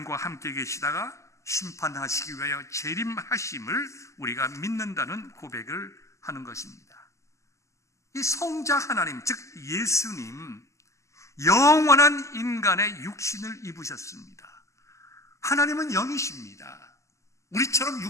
함께 계시다가 심판하시기 위하여 재림하심을 우리가 믿는다는 고백을 하는 것입니다. 이 성자 하나님, 즉 예수님, 영원한 인간의 육신을 입으셨습니다. 하나님은 영이십니다. 우리처럼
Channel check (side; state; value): right; late; 0.15 ms